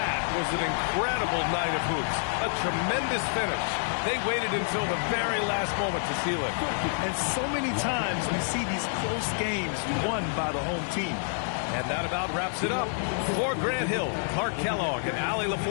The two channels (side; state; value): right; silent; digital silence